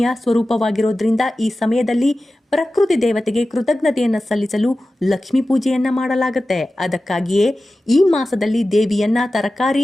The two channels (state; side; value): normal; both; correlation 0.95